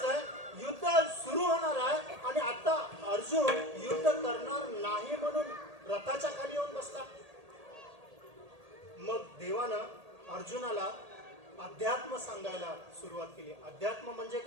युद्ध सुरू होणार आहे, आणि आता अर्जुन युद्ध करणार नाही म्हणून रथाच्या खाली येऊन बसला. मग देवानं अर्जुनाला अध्यात्म सांगायला सुरुवात केली. अध्यात्म म्हणजे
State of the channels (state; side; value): late; left; 1.8 ms